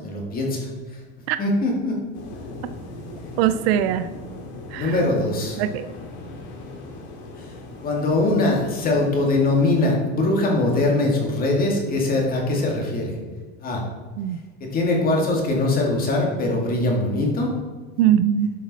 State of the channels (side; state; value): both; normal; correlation 0.27